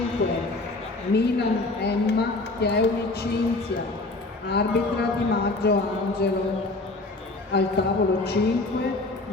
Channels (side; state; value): right; quieter; 3.1 dB